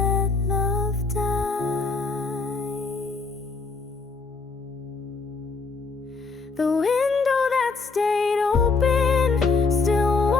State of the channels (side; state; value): right; quieter; 4.3 dB